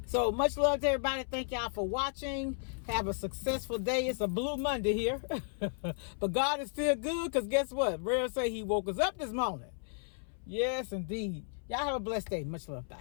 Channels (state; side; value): silent; right; 55 dB below the other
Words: So much love to everybody. Thank y'all for watching. Have a successful day. It's a blue Monday here. But God is still good, because guess what? Rare say he woke us up this morning. Yes, indeed. Y'all have a blessed day. Much love.